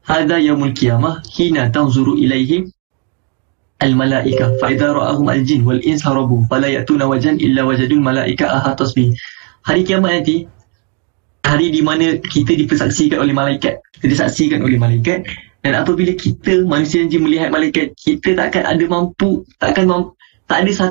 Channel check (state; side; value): quieter; left; 37.7 dB